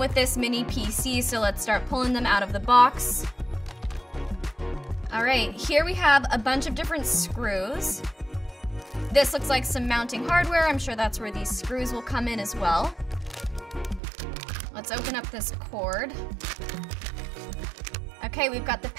this mini PC, so let's start pulling them out of the box. All right, here we have a bunch of different screws. This looks like some mounting hardware. I'm sure that's where these screws will come in as well. Let's open up this cord. Okay, we've got the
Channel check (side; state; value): left; drops out; at 14.0 s